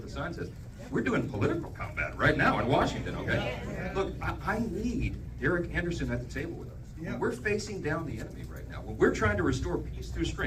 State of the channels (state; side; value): identical; both; correlation 1.00